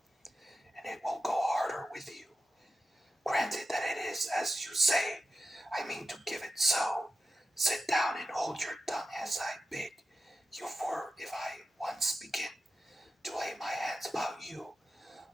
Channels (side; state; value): both; normal; correlation 0.91